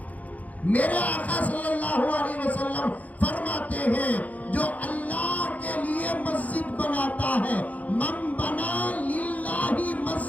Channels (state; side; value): late; right; 0.074 ms